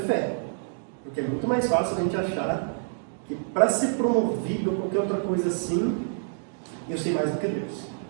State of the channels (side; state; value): left; silent; digital silence